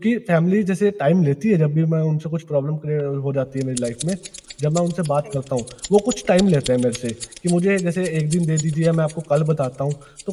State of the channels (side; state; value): both; identical; correlation 1.00